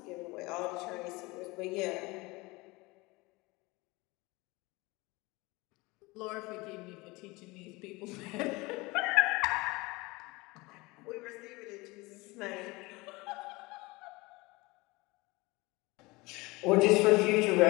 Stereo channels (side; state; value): right; quieter; 23.4 dB